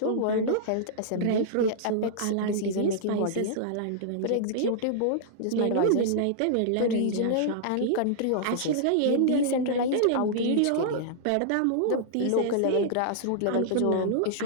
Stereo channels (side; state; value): both; different; correlation -0.02